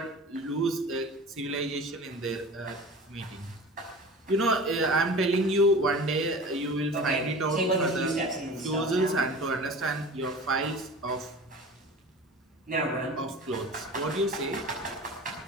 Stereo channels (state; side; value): normal; both; correlation 0.37